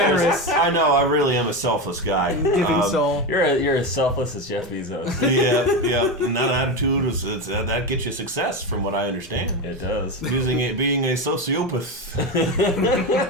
I know, I really am a selfless guy. Giving soul. You're as selfless as Jeff Bezos. Yeah. And that attitude, that gets you success, from what I understand. It does. Being a sociopath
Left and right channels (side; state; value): both; normal; correlation 0.17